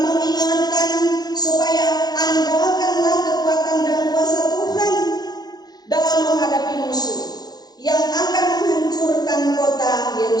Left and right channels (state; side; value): late; right; 0.19 ms